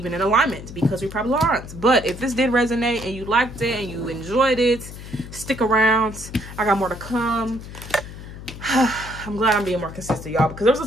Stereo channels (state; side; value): noise; left; hum, 13 dB below the sound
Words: in alignment, because we probably aren't. But if this did resonate and you liked it and you enjoyed it, stick around. I got more to come. I'm glad I'm being more consistent, y'all, because there